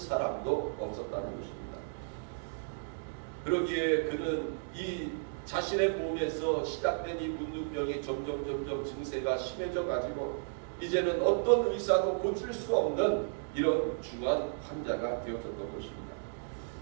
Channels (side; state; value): left; silent; digital silence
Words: 없었다는 것입니다. 그러기에 그는 이 자신의 몸에서 시작된 이 문둥병이 점점 증세가 심해져 가지고 이제는 어떤 의사도 고칠 수 없는 이런 중한 환자가 되어졌던 것입니다.